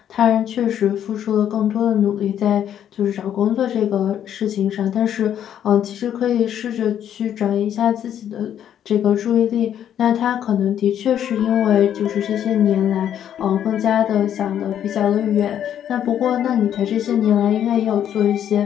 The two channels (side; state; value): right; quieter; 10.0 dB